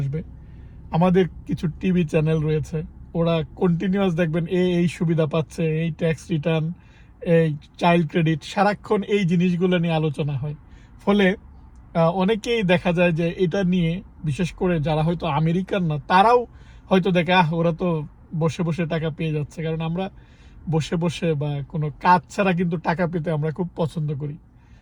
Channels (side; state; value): both; identical; correlation 1.00